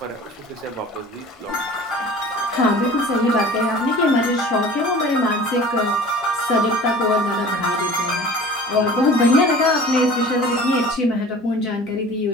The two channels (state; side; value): normal; both; correlation 0.43